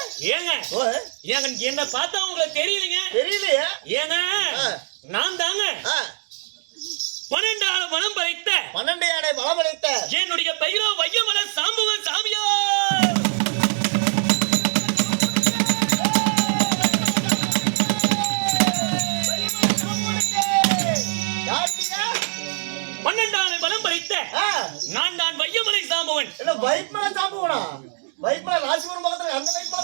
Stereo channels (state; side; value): silent; left; digital silence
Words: ஏங்க என்ன பார்த்தா உங்களுக்கு தெரியலீங்க தெரியலையா ஏங்க நான் தாங்க 12 ஆள மனம் படைத்த 12 ஆடை மனம் படைத்த என்னுடைய பெயரோ வையமல சாம்புவன் சாமியா நான் தான் வையமலை சாம்புவன். என்ன வையமலை சாம்புவனா? வையமலை ராசிபுரம் பக்கத்துல அந்த வையமலை